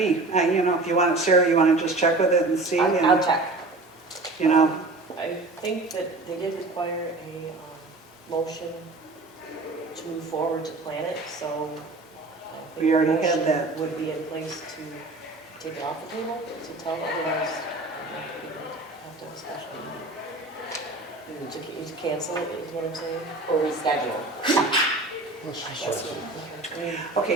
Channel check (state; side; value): quieter; left; 3.1 dB